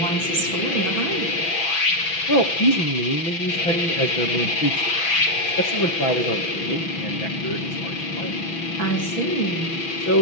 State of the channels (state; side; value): late; right; 6.0 ms